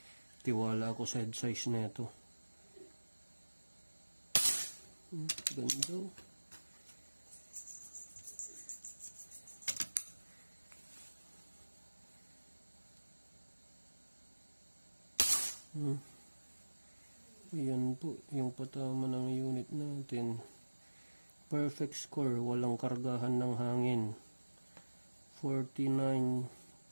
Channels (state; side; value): inverted; both; correlation -1.00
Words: tiwala ako sa head size na ito. Ganda. Ayan po yung patama ng unit natin. Perfect score, walang kargahan ng hangin. 49,